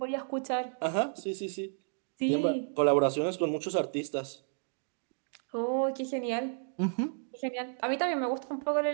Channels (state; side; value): silent; left; digital silence